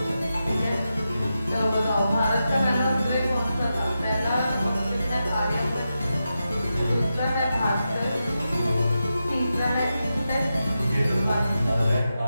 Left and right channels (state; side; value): inverted; both; correlation -0.89